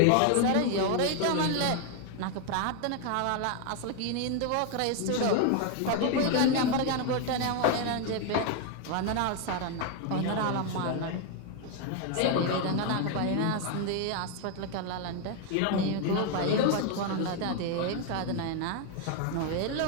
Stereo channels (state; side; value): different; both; correlation 0.01